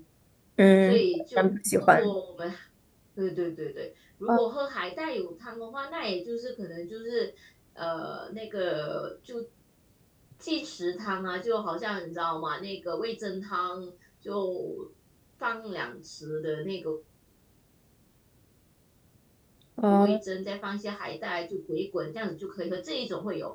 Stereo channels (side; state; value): both; identical; correlation 1.00